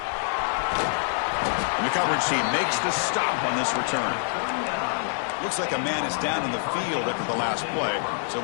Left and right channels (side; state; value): right; silent; digital silence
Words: And the coverage team makes the stop on this return. Looks like a man is down in the field after the last play, so